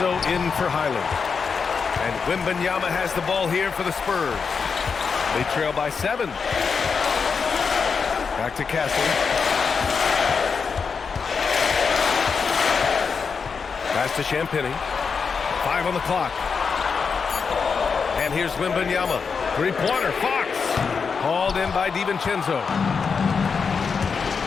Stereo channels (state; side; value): quieter; right; 5.6 dB